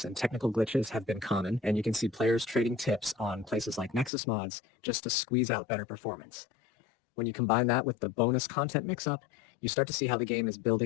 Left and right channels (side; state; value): right; drops out; at 4.1 s